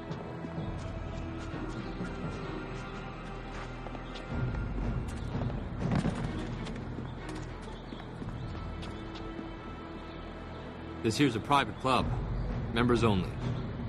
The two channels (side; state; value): both; identical; correlation 1.00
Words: This here's a private club. Members only.